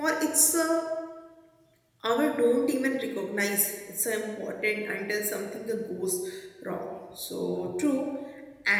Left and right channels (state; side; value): identical; both; correlation 1.00